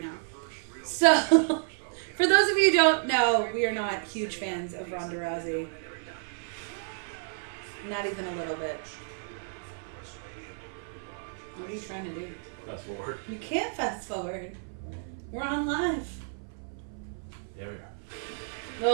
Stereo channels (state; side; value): silent; left; 57 dB below the other